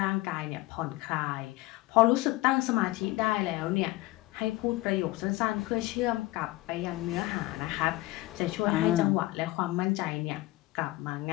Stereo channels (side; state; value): right; quieter; 18.9 dB